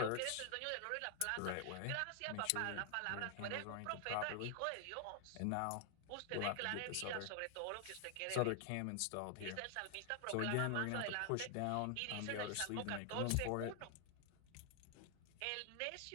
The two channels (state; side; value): different; both; correlation 0.00